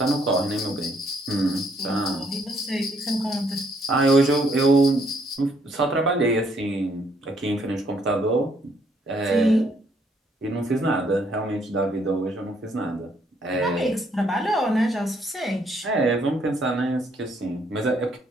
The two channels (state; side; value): normal; both; correlation 0.69